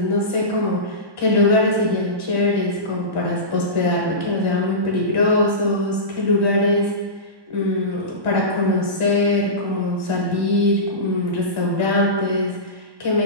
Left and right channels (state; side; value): late; left; 1.1 ms